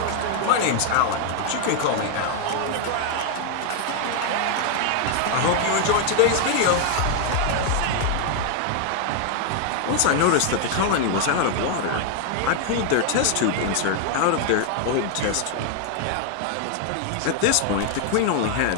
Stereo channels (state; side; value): different; both; correlation 0.00